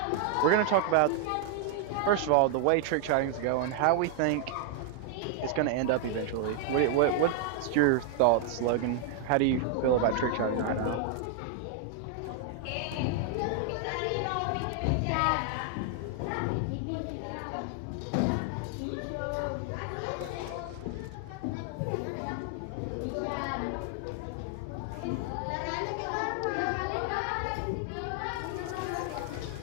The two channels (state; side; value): different; both; correlation 0.00